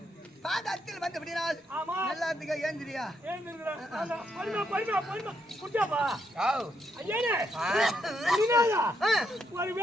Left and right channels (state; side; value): normal; both; correlation 0.78